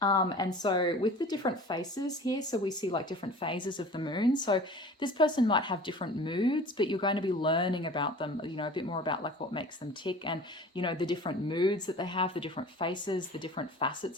And so with the different faces here, so we see like different phases of the moon. So this person might have different moods, but you're going to be learning about them, a bit more about like what makes them tick, and, the different moods that they have, the different faces, the different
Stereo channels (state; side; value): normal; both; correlation 0.42